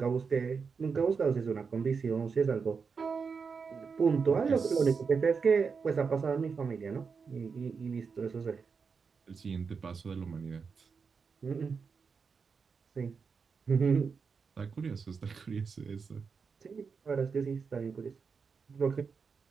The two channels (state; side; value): quieter; left; 5.5 dB